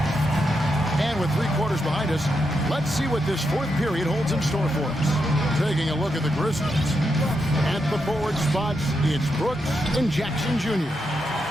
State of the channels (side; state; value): both; normal; correlation 0.84